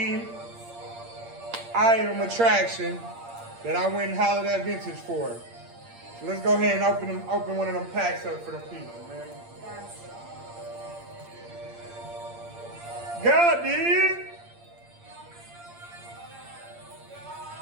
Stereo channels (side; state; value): left; late; 8.7 ms